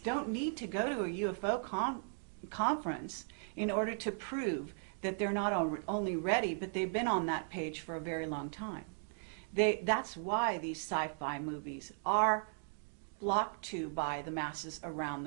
need to go to a UFO conference in order to prove that they're not only ready, but they've been on that page for a very long time. That's why these sci-fi movies are flocked to by the masses around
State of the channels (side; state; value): left; silent; digital silence